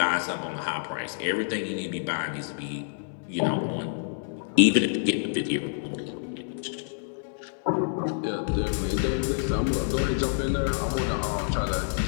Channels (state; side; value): silent; right; digital silence